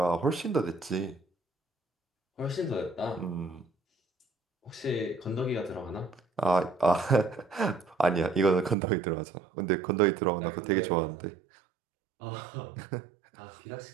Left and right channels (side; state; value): left; drops out; at 8.8 s